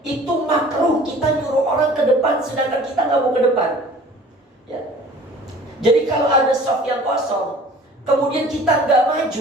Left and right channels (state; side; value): normal; both; correlation 0.48